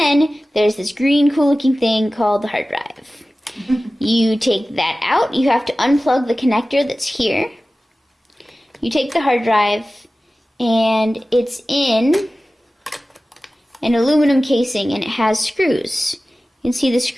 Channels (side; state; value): both; normal; correlation 0.96